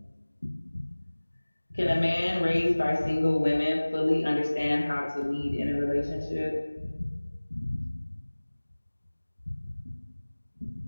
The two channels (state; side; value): inverted; both; correlation -1.00